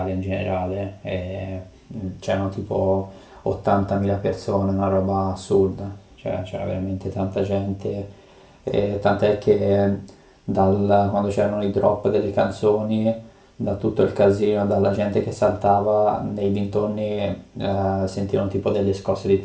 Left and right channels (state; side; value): identical; both; correlation 1.00